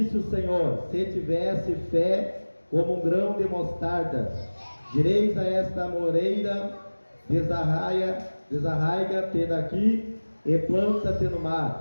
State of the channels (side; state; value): both; inverted; correlation -1.00